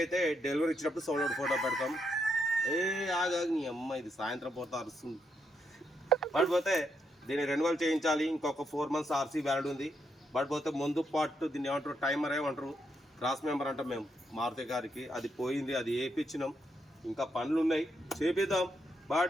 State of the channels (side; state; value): both; normal; correlation 0.79